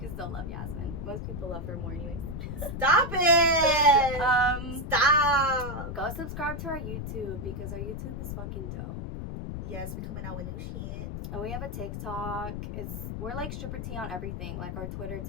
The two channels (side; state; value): left; noise; rumble, 6 dB below the sound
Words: still love Yazmine. Most people love her more anyways. Stop it! Stop! Go subscribe to our YouTube because our YouTube is fucking dope. Yes, we're coming out with new shit. And we have a TikTok. We're like Stripper T on everything. Like our Twitter,